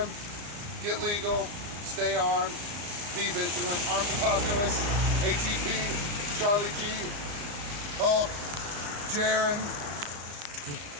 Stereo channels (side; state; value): left; late; 34 ms